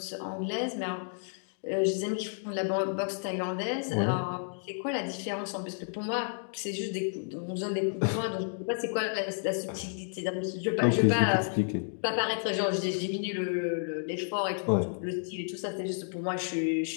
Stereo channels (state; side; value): silent; right; digital silence